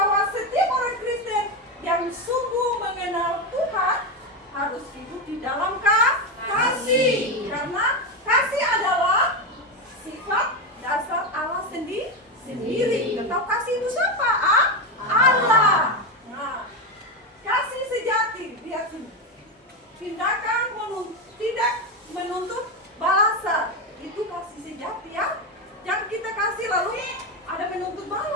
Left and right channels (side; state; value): both; normal; correlation 0.12